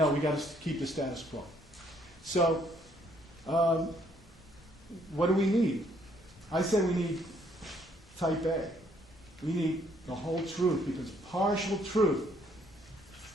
we got to keep the status quo. So What do we need? I say we need type A. We need the whole truth, because partial truth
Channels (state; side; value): normal; both; correlation 0.67